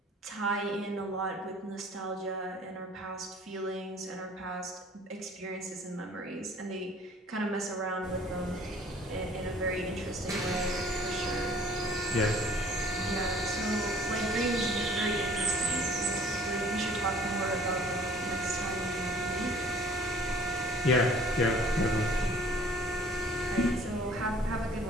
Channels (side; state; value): both; normal; correlation 0.52